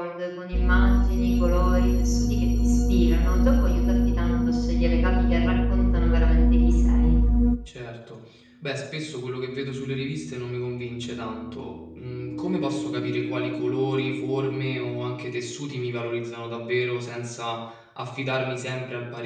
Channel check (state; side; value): identical; both; correlation 1.00